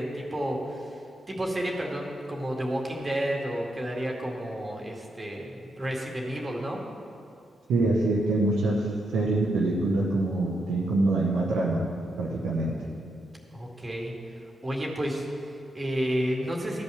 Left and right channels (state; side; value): normal; both; correlation 0.82